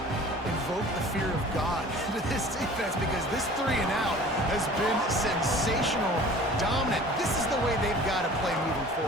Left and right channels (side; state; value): both; normal; correlation 0.45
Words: invoked the fear of God into this defense, because this 3 and out has been sensational, dominant. This is the way they've got to play moving